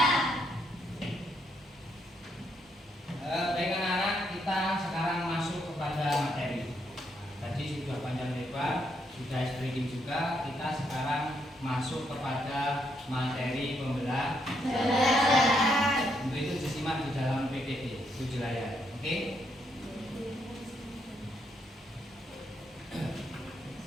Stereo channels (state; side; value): normal; both; correlation 0.76